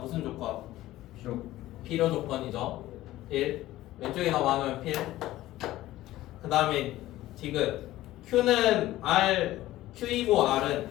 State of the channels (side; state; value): right; quieter; 15.7 dB